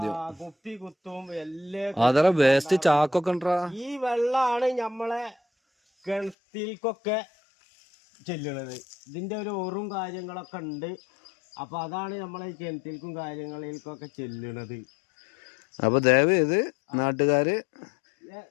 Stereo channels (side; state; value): right; drops out; at 6.4 s